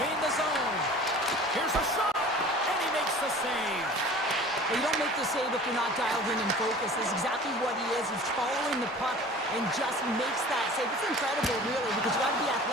the zone. Here's a shot, and he makes the save. Well, you don't make the save if you're not dialed in and focused. That's exactly what he is. He's following the puck and just makes that save. It's incredible, really, because you got to be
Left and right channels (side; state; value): both; normal; correlation 0.43